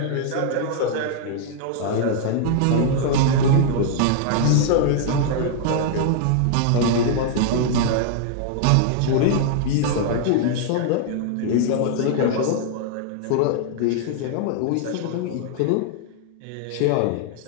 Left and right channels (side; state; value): both; different; correlation 0.00